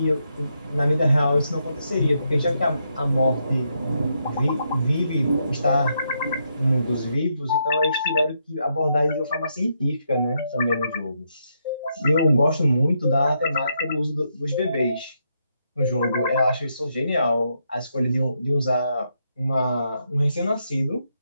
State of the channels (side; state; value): both; inverted; correlation -0.79